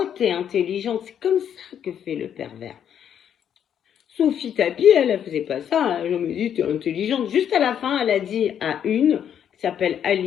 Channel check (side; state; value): right; quieter; 9.1 dB